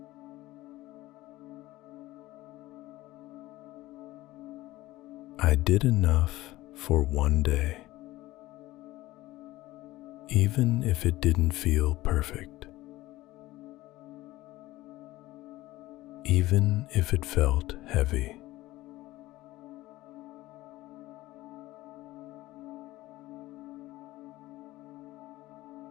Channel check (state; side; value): quieter; right; 17.5 dB